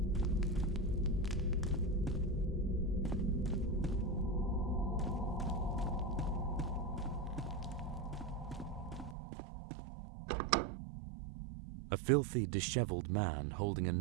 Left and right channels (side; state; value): left; drops out; at 9.2 s